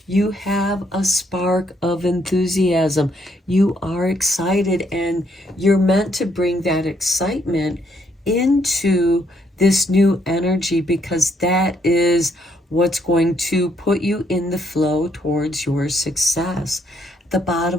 You have a spark of enthusiasm. You are excited, and you're meant to bring that excitement into this new energy, because that is what's going to put you in the flow towards your success. At the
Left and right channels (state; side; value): normal; both; correlation 0.72